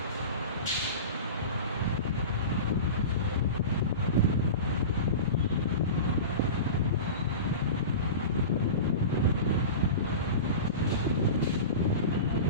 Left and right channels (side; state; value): both; inverted; correlation -0.30